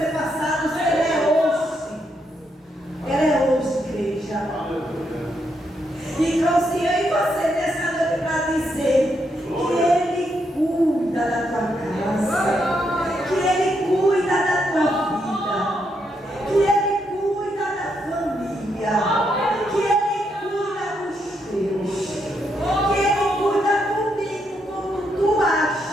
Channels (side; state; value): both; normal; correlation 0.79